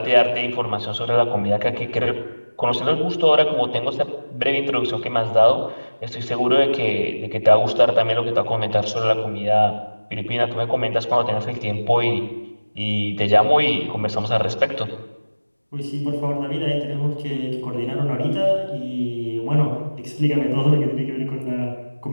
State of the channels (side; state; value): both; inverted; correlation -1.00